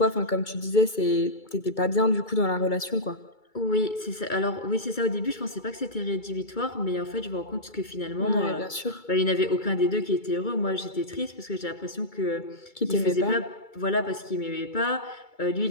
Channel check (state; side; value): late; right; 2.3 ms